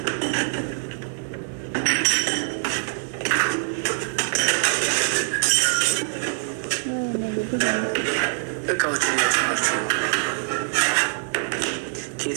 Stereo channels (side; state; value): left; silent; 63 dB below the other